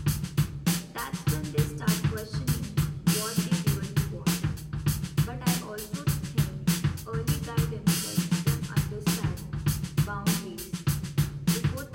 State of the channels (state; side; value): identical; both; correlation 1.00